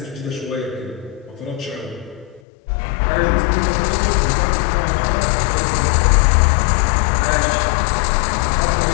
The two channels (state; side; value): drops out; right; at 2.4 s